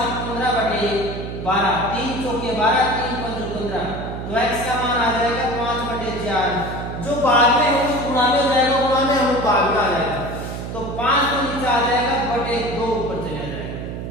15/12, 3 चौके 12 3 5 15, तो x का मान आ जाएगा 5/4। जो बाद में हम गुणा में हो जाएगा, गुणा में हम भाग में आ जाएगा, तो 5 तो नीचे आ जाएगा /2 ऊपर चला जाएगा।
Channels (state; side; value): noise; right; hum, 7 dB below the sound